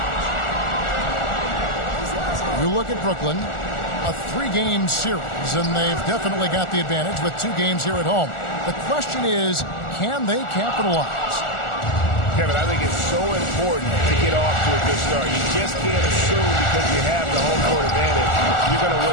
You look at Brooklyn, a 3-game series, and they've definitely got the advantage with 2 games here at home. The question is, can they capitalize? Kevin, I think it's so important to get off to a good start. You just can't assume because you have the home court advantage you're going to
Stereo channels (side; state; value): right; late; 1.4 ms